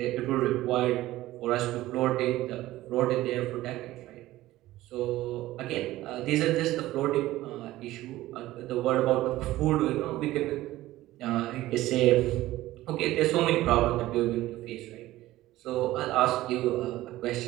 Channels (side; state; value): left; quieter; 16.3 dB